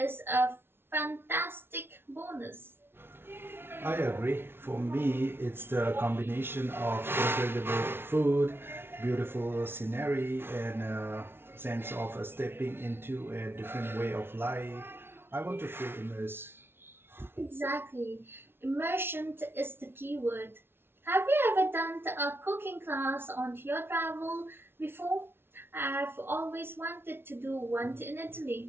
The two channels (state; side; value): late; left; 0.11 ms